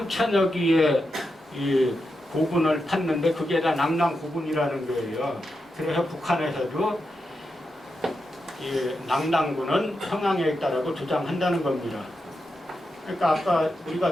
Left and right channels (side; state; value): both; normal; correlation 0.87